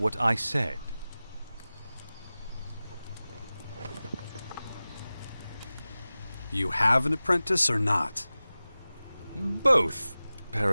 I said. You have an apprentice or not? Both,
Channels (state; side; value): inverted; both; correlation -0.97